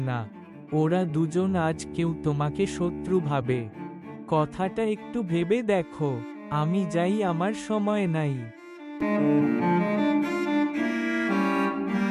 না। ওরা দুজন আজ কেউ তোমাকে শত্রু ভাবে। কথাটা একটু ভেবে দেখো। আমি যাই, আমার সময় নাই।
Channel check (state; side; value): identical; both; correlation 1.00